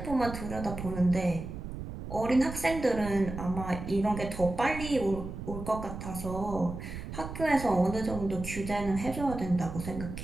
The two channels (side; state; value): right; noise; rumble, 8 dB below the sound